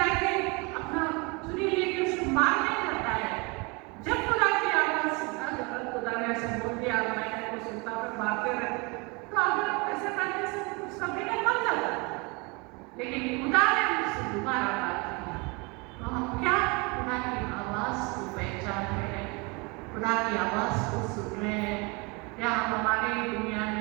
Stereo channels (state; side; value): quieter; left; 28.7 dB